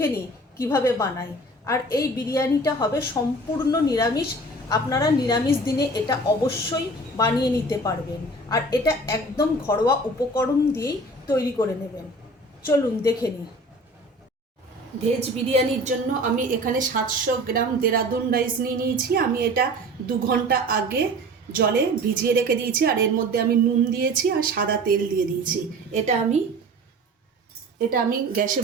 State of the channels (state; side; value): normal; both; correlation 0.42